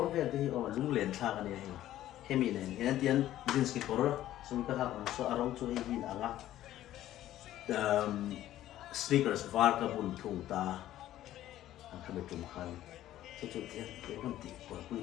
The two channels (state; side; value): quieter; right; 13.4 dB